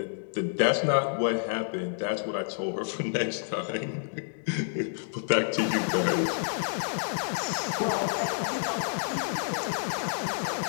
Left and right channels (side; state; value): right; silent; digital silence